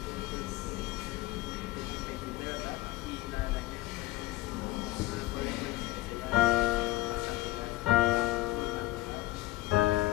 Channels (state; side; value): quieter; right; 17.4 dB